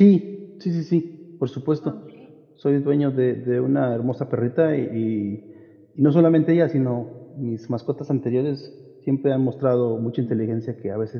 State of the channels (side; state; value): both; identical; correlation 1.00